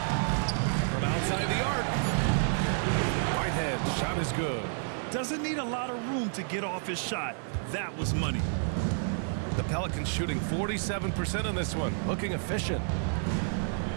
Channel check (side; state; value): left; silent; 57 dB below the other